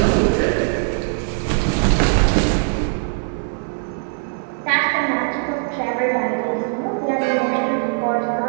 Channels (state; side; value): silent; left; digital silence